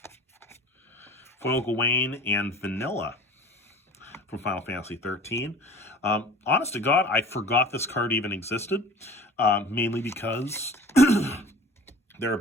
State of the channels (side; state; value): both; normal; correlation 0.42